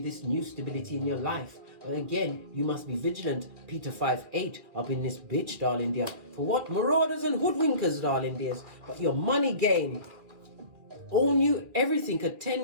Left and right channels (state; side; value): late; left; 2.3 ms